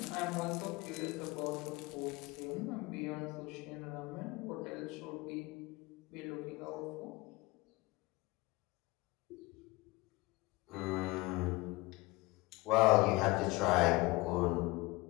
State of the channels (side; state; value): right; quieter; 22.5 dB